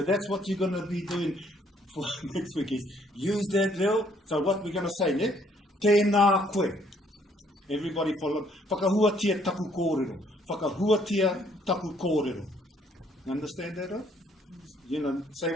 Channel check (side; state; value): both; normal; correlation 0.65